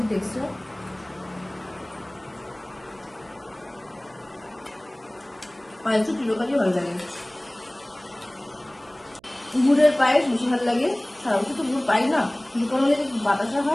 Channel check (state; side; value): noise; right; hum, 29 dB below the sound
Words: টেক্সচার। পায়েসটা চিরকালই ভালো লাগে। গুড়ের পায়েস বেশি ভালো লাগে। সারা বছর তো গুড় পাই না, দোকানে যে বাতাসা